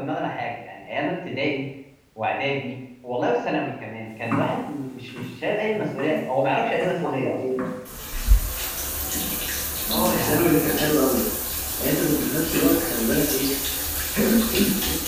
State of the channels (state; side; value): identical; both; correlation 1.00